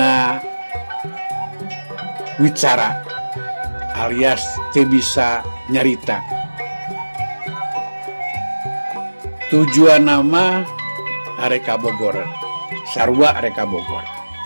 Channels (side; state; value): both; inverted; correlation -1.00